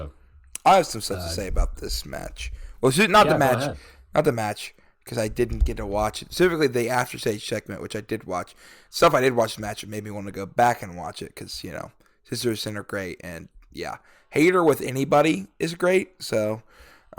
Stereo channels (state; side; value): identical; both; correlation 1.00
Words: I have some stuff to say about this match. Well, not the match. Because I didn't get to watch it. Specifically, the After Stage segment, which I did watch. Stuff I did watch the match, it made me want to go back and watch it. Because, Sisters of Sin are great. And, yeah. Hayter with anybody is great. So,